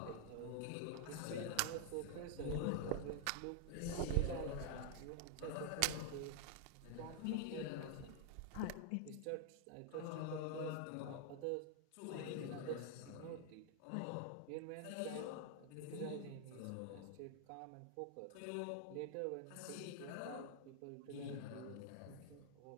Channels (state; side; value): different; both; correlation 0.00